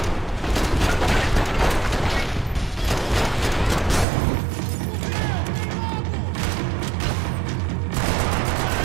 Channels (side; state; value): left; drops out; at 4.0 s